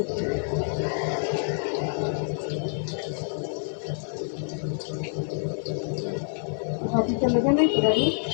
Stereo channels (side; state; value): right; silent; 58 dB below the other